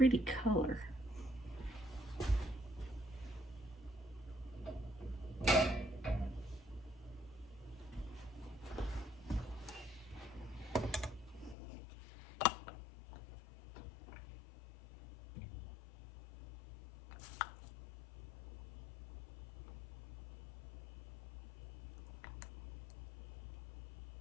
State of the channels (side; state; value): right; drops out; at 11.6 s